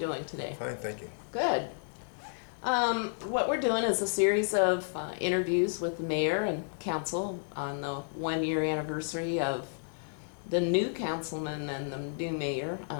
today? Fine, thank you. Good. What we're doing is a series of interviews with the mayor and council on the 1-year anniversary of the new councilman and the new mayor.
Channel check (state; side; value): silent; right; digital silence